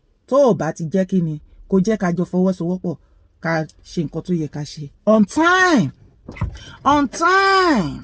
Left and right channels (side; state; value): both; identical; correlation 1.00